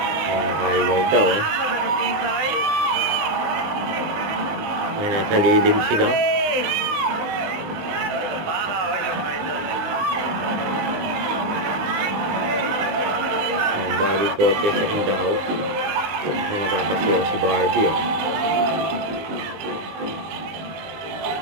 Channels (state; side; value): late; left; 20 ms